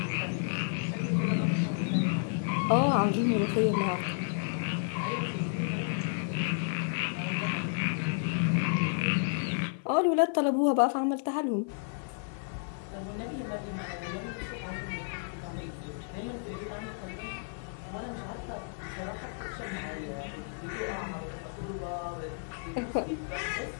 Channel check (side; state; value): right; silent; 57 dB below the other